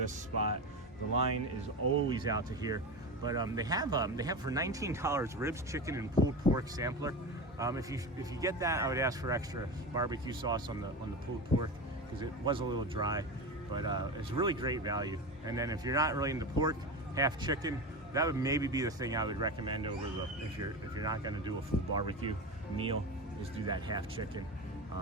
spot. The line is always out to here. But they have for $19 ribs, chicken, and pulled pork sampler. If you get that, I would ask for extra barbecue sauce on the pulled pork because it was a little dry. But it's really great value. And then if you're not really into pork, half chicken, that would maybe be the thing I would recommend over the if you're not going to do a full barbecue meal, is do that half chicken.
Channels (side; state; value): both; normal; correlation 0.23